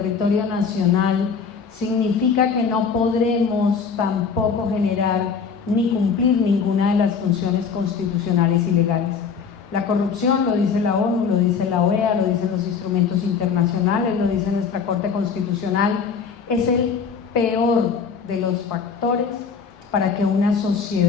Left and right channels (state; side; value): quieter; right; 5.9 dB